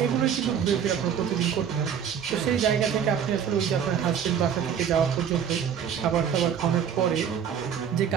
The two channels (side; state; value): left; quieter; 8.1 dB